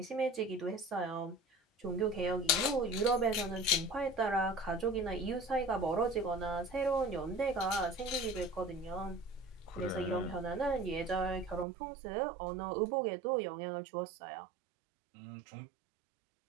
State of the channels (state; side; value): drops out; left; at 11.7 s